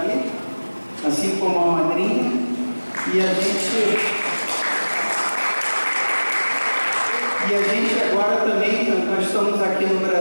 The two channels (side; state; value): both; inverted; correlation -1.00